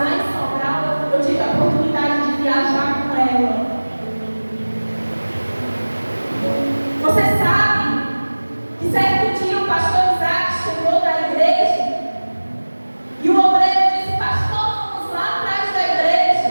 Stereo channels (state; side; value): inverted; both; correlation -1.00